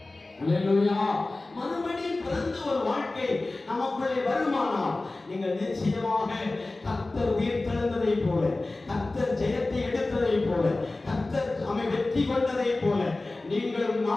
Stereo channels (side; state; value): right; quieter; 3.1 dB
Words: அல்லேலூயா. மறுபடியும் பிறந்த ஒரு வாழ்க்கை நமக்குள்ளே வருமானால் நீங்கள் நிச்சயமாக கர்த்தர் உயிர்த்தெழுந்ததை போல, கர்த்தர் ஜெயத்தை எடுத்ததை போல, கர்த்தர் நம்மை வெற்றி கொண்டதை போல நீங்களும்